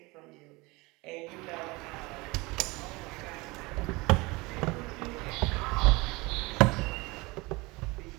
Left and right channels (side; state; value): left; quieter; 23.9 dB